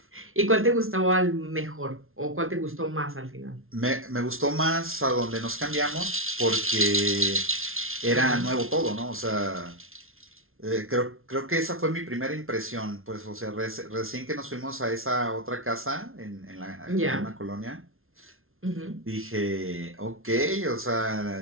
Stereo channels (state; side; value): late; left; 0.61 ms